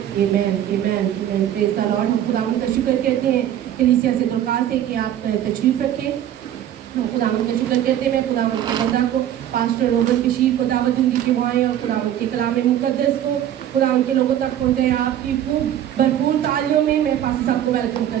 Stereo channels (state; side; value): quieter; left; 11.2 dB